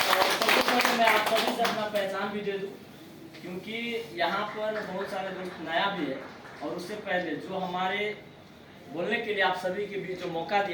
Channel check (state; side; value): identical; both; correlation 1.00